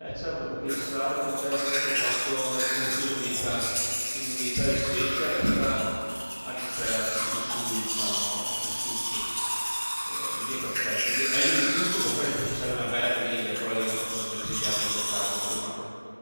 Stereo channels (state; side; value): inverted; both; correlation -1.00